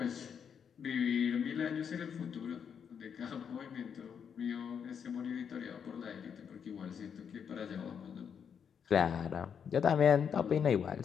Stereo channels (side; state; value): right; quieter; 7.3 dB